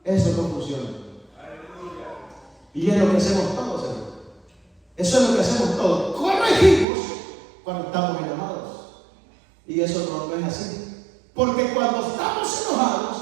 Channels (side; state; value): left; drops out; at 6.9 s